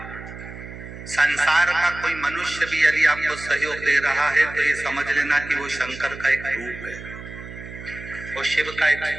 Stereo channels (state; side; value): noise; right; hum, 13 dB below the sound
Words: संसार का कोई मनुष्य भी यदि आपको सहयोग दे रहा है तो ये समझ लेना कि वो शंकर का एक रूप है, वो शिव का एक